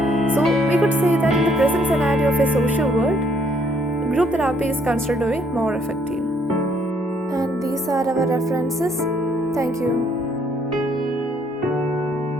So we could say that in the present scenario of a social world, group therapy is considered to be more effective. And these are our references. Thank you.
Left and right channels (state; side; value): normal; both; correlation 0.67